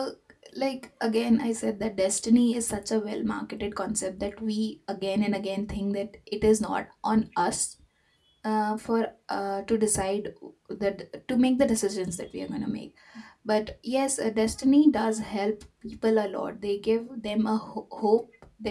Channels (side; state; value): both; identical; correlation 1.00